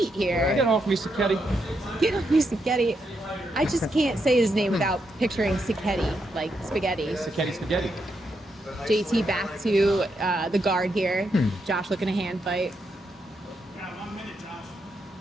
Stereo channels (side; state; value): both; normal; correlation 0.81